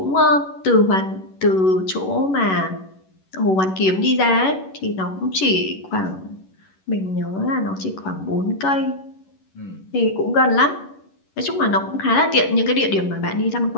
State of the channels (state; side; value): late; right; 11 ms